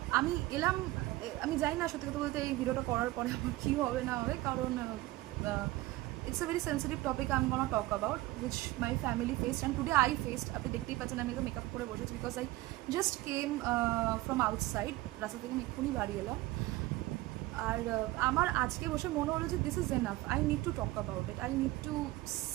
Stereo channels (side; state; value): left; quieter; 18.2 dB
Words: আমি এলাম, আমি জানি না সত্যি কথা বলতে এই ভিডিওটা করার পরে আমার কী হবে না হবে, কারণ it's a very sensitive topic I'm gonna talk about which my family faced and today I faced. আপনি দেখতেই পাচ্ছেন আমি তো মেকআপ করে বসেছি because I just came from outside, রাস্তা থেকে আমি এক্ষুনি বাড়ি এলাম। আর আমার আজকে বসে মনে হলো যে this is enough, I need to talk about it, I need to